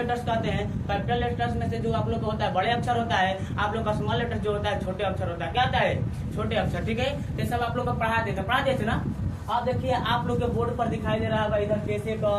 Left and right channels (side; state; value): both; identical; correlation 1.00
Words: कहते हैं। कैपिटल लेटर्स में से जो आप लोग को होता है बड़े अक्षर होता है, आप लोग का स्मॉल लेटर्स जो होता है छोटे अक्षर होता है। क्या होता है? छोटे अक्षर। ठीक है, ये सब आप लोग को पढ़ा देते थे ना। अब देखिए आप लोग के बोर्ड पर दिखाई दे रहा है इधर कैसे का